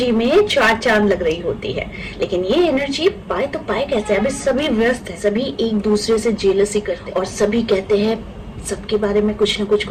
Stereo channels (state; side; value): identical; both; correlation 1.00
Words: में चार चांद लग रही होती है। लेकिन ये एनर्जी पाए तो पाए कैसे? अभी सभी व्यस्त है, सभी एक दूसरे से जेलसी करते हैं और सभी कहते हैं सबके बारे में कुछ ना